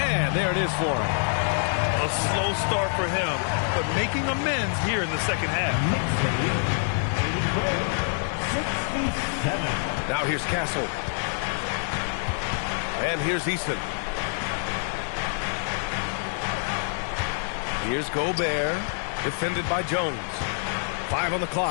there it is for him. A slow start for him, but making amends here in the second half. Now here's Castle. And here's Eason. Here's Gobert, defended by Jones. 5 on the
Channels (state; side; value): silent; right; 61 dB below the other